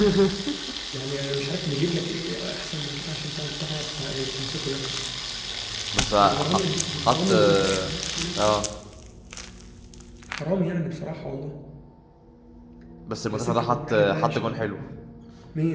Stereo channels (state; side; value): identical; both; correlation 1.00